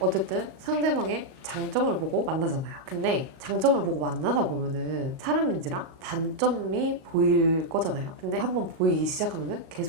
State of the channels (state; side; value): late; left; 38 ms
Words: 상대방의 장점을 보고 만나잖아요. 근데 장점을 보고 만나다 보면은 사람인지라 단점이 보일 거잖아요. 근데 한번 보이기 시작하면은